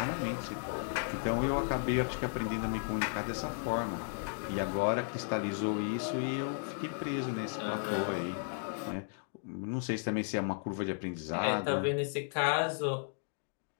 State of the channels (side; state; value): right; silent; digital silence